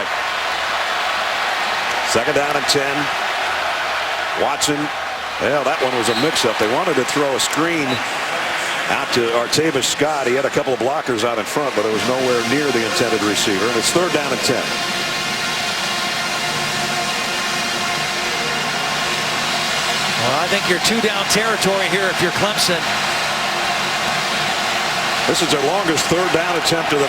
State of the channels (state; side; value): identical; both; correlation 1.00